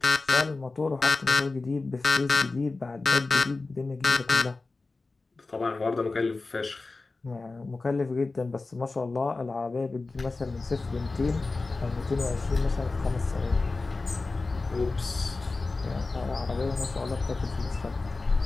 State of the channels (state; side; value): quieter; right; 3.6 dB